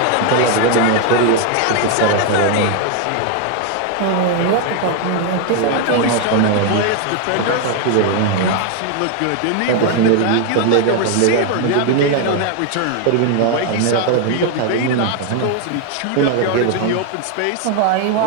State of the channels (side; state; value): both; different; correlation 0.01